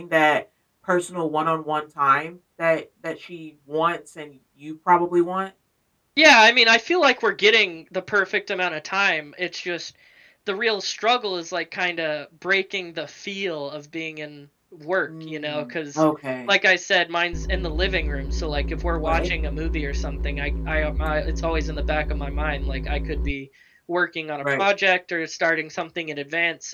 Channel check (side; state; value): both; identical; correlation 1.00